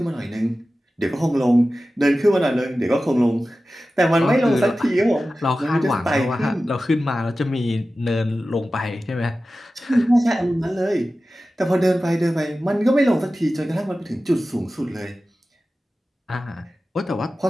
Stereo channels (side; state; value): both; normal; correlation 0.95